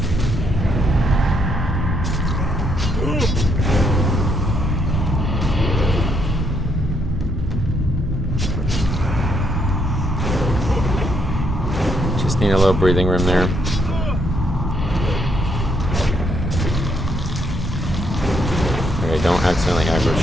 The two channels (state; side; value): normal; both; correlation 0.74